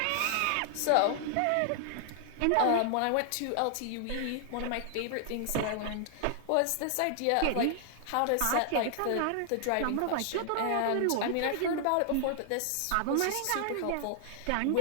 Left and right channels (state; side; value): different; both; correlation 0.00